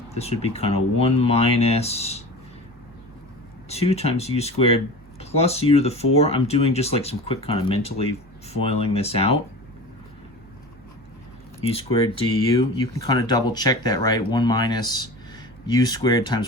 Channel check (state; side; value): normal; both; correlation 0.34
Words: This would be kind of 1 minus 2 times u squared plus u to the 4. I'm doing just like some quick kind of mentally foiling this out. U squared du. You can kind of double check that, right? 1 minus u squared